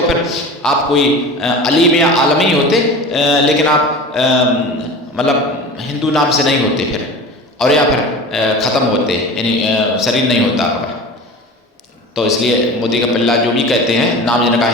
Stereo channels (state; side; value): normal; both; correlation 0.35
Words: फिर आप कोई अलीम या आलमी होते, लेकिन आप मतलब हिंदू नाम से नहीं होते फिर, और या फिर ख़त्म होते, यानी शरीर नहीं होता आपका। तो इसलिए मोदी का पिल्ला जो भी कहते हैं, नाम जिनका